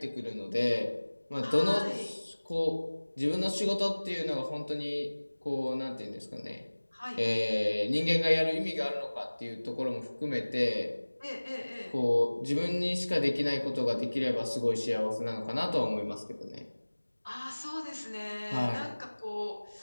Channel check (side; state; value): both; inverted; correlation -1.00